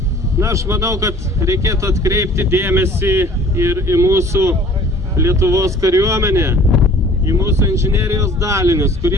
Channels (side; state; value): both; normal; correlation 0.50